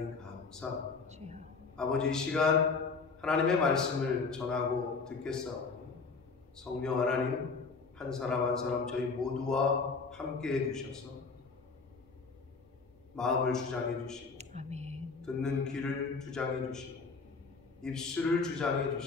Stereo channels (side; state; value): right; quieter; 4.6 dB